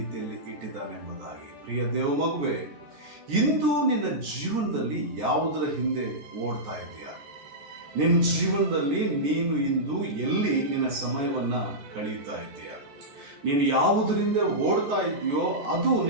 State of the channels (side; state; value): left; late; 14 ms